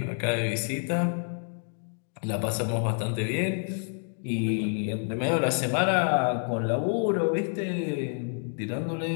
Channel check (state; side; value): silent; right; 59 dB below the other